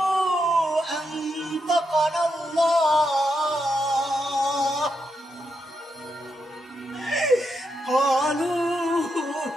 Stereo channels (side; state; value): both; normal; correlation 0.83